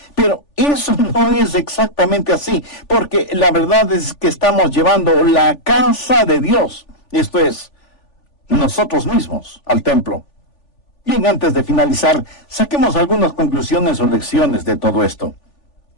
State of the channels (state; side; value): late; right; 3.4 ms